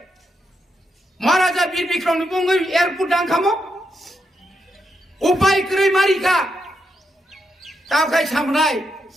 মহারাজা বীর বিক্রমনি বঙ্গই এয়ারপোর্ট ডাংখামো উপায় করে মারিকা তাও খাই সামনাই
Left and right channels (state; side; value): normal; both; correlation 0.82